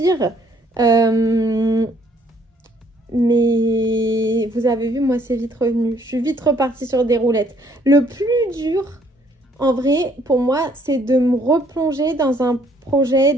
Mais vous avez vu, moi, c'est vite revenu. Je suis vite repartie sur des roulettes. Le plus dur, en vrai, pour moi, c'est de me replonger dans un projet,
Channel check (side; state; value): both; normal; correlation 0.64